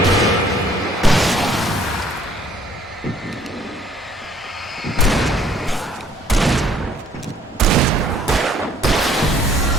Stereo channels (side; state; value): both; normal; correlation 0.60